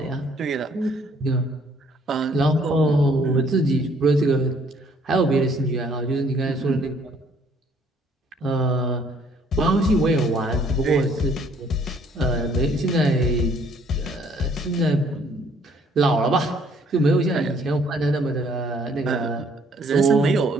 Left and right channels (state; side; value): normal; both; correlation 0.62